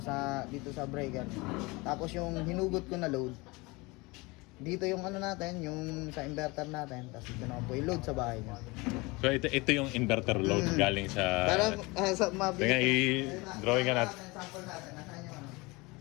dito sa breaker. Tapos yung hinugot ko na load, dito yung natin, yung sa inverter natin, tapos ito naman po yung load sa bahay niya. So ito yung inverter load galing sa... Pero sa mabilis. Tingnan, i-drawing ka natin. Sample natin, nasaan yung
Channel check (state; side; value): quieter; right; 24.4 dB